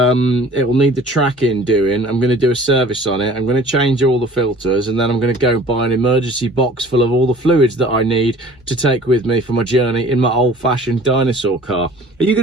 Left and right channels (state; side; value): normal; both; correlation 0.48